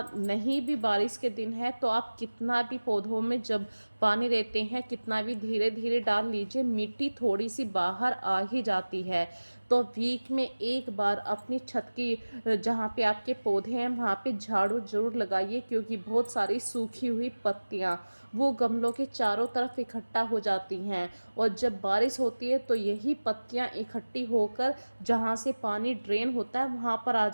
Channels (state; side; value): inverted; both; correlation -1.00